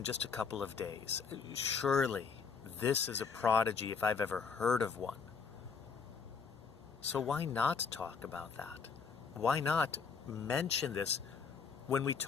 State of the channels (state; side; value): quieter; right; 5.7 dB